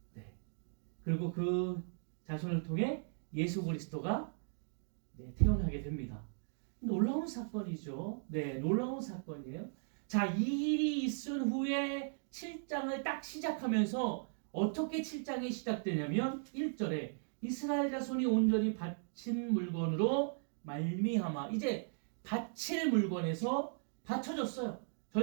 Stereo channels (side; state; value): left; silent; digital silence